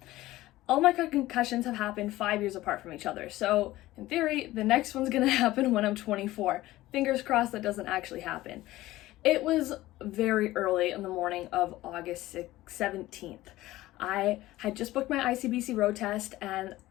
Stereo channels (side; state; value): right; quieter; 16.8 dB